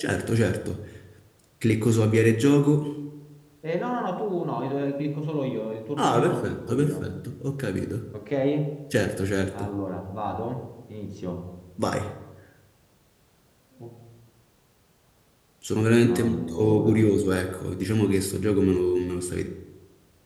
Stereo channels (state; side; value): identical; both; correlation 1.00